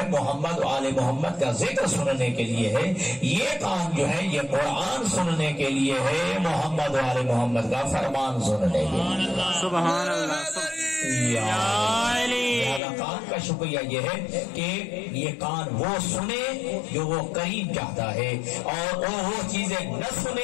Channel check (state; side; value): drops out; right; at 12.8 s